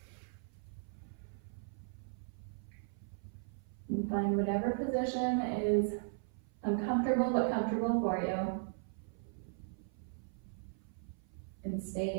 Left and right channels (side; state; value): left; silent; 53 dB below the other